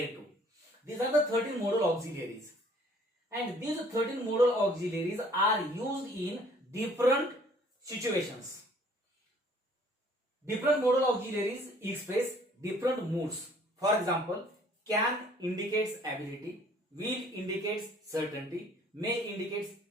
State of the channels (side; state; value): both; normal; correlation 0.57